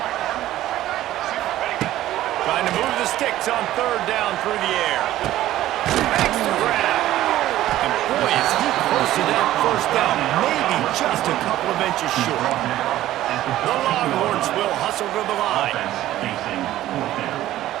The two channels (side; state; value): left; quieter; 14.1 dB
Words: Trying to move the sticks on third down through the air. Makes the grab. And boy, is he close to that first down, maybe just a couple of inches short. The Longhorns will hustle to the line.